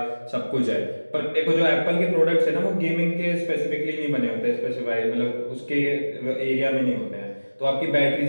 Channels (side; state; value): both; inverted; correlation -1.00